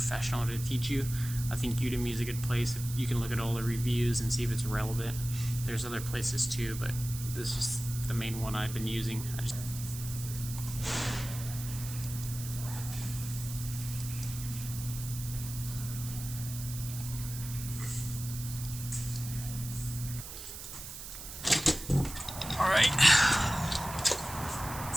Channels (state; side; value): noise; right; hiss, 10 dB below the sound